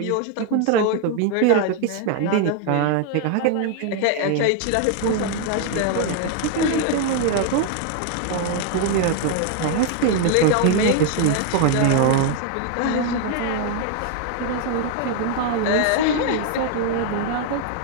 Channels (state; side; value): different; both; correlation 0.00